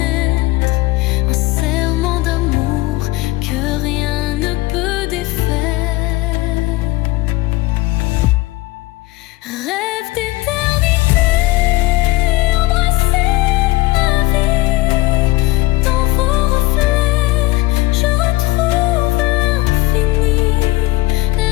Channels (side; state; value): right; quieter; 19.7 dB